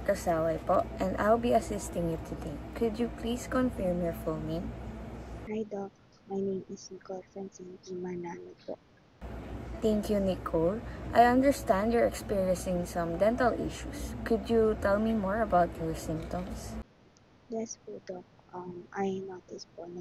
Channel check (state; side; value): identical; both; correlation 1.00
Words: Kasaway po, and I'll be assisting you today. Could you please confirm your full name? Hi Doc, my name is Nicole Francine P. Manalo po. Thank you, Nicole. I understand you're experiencing some dental issues. Could you tell me more about your symptoms? Yes po Doc, I noticed po